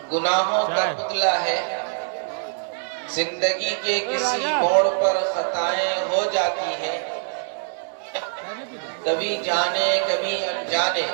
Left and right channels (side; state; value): left; silent; digital silence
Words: گناہوں کا پتلا ہے. زندگی کے کسی موڑ پر خطائیں ہو جاتی ہیں، کبھی جانے کبھی انجانے.